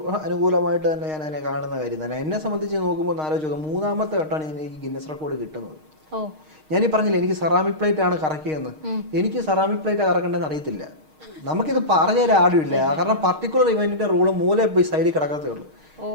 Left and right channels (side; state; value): left; late; 6.5 ms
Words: അനുകൂലമായിട്ട് തന്നെ ഞാൻ അതിനെ കാണുന്ന കാര്യം തന്നെ. എന്നെ സംബന്ധിച്ച് നോക്കുമ്പോൾ ആലോചിച്ച് 3ാമത്തെ വട്ടമാണ് എനിക്ക് ഗിന്നസ് റെക്കോർഡ് കിട്ടുന്നത്. ഞാനീ പറഞ്ഞില്ല എനിക്ക് സെറാമിക് പ്ലേറ്റ് ആണ് കറക്കിയെന്ന്. എനിക്ക് സെറാമിക് പ്ലേറ്റ് കറക്കേണ്ടതെന്ന് അറിയത്തില്ല. നമുക്കിത് പറഞ്ഞുതരാൻ ആരുമില്ല. കാരണം പർട്ടിക്കുലർ ഇവന്റിന്റെ റൂള് മൂലയിൽ പോയി സൈഡിൽ കിടക്കത്തേ ഉള്ളൂ.